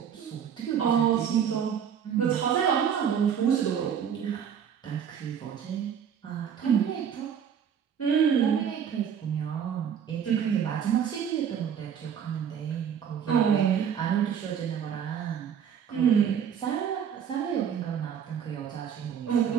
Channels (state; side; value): quieter; left; 8.2 dB